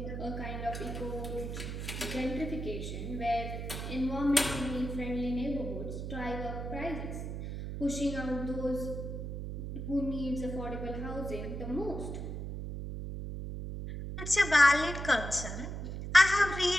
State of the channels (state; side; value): noise; right; hum, 6 dB below the sound